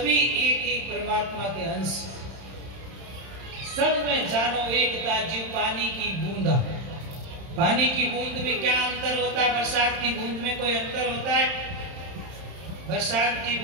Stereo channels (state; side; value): late; left; 31 ms